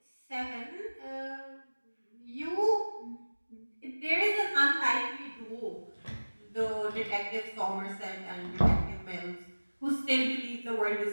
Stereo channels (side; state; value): both; inverted; correlation -1.00